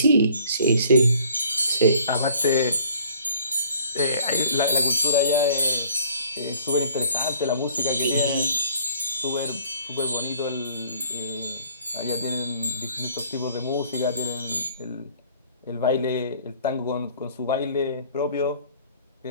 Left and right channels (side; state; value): both; inverted; correlation -0.56